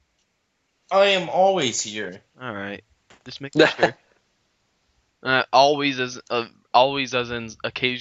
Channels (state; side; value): identical; both; correlation 1.00